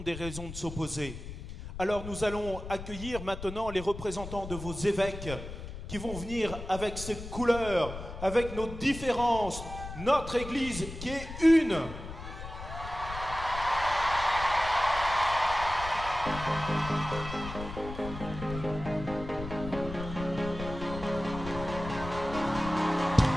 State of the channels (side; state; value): left; noise; rumble, 10 dB below the sound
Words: des raisons de s'opposer. Alors nous allons accueillir maintenant les représentants de vos évêques qui vont venir avec ces couleurs, avec nos différences, notre Église qui est une.